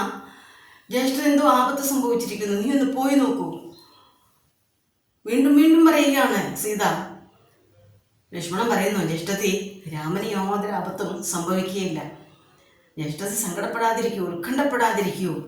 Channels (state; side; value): identical; both; correlation 1.00